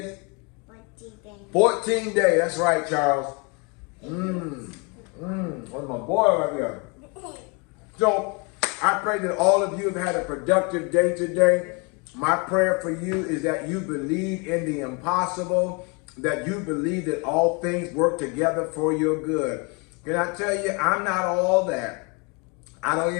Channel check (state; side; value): quieter; right; 31.8 dB